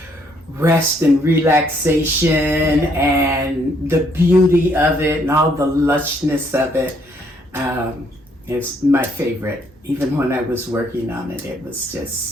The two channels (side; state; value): both; normal; correlation 0.69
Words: rest and relaxation and the beauty of it and all the lushness of it. It's my favorite. Even when I was working on it, it was